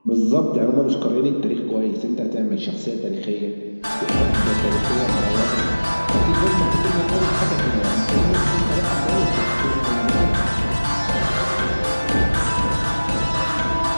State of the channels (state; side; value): inverted; both; correlation -1.00